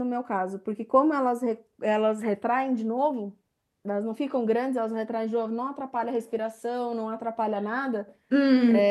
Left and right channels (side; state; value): both; identical; correlation 1.00